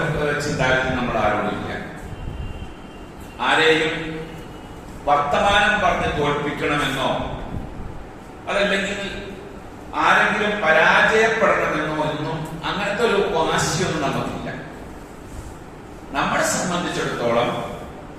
ചിന്താഗതി നമ്മൾ ആരോടും ഇല്ല. ആരെയും വർത്തമാനം പറഞ്ഞ് തോൽപ്പിക്കണമെന്നോ അതല്ലെങ്കിൽ ആരെങ്കിലും പരാജയപ്പെടണമെന്നോ ഒന്നും അങ്ങനത്തെ ഒരു വാശിയൊന്നും നമുക്കില്ല. നമ്മളെ സംബന്ധിച്ചിടത്തോളം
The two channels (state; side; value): identical; both; correlation 1.00